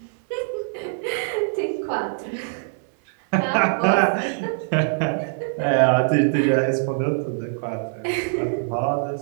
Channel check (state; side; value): silent; left; 61 dB below the other